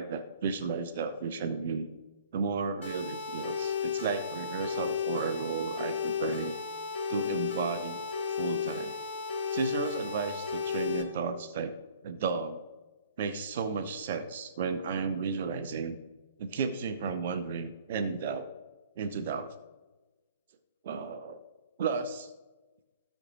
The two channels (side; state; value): both; inverted; correlation -0.52